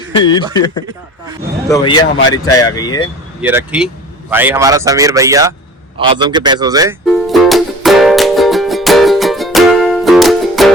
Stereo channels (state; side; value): normal; both; correlation 0.42